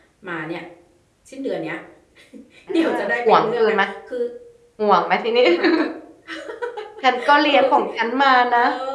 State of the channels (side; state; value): both; identical; correlation 1.00